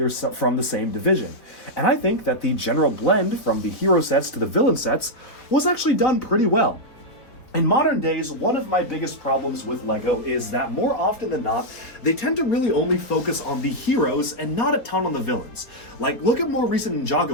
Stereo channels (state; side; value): late; right; 4.1 ms